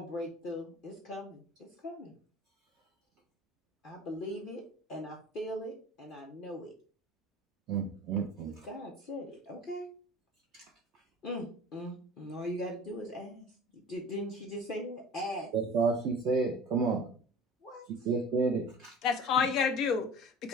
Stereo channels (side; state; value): both; normal; correlation 0.41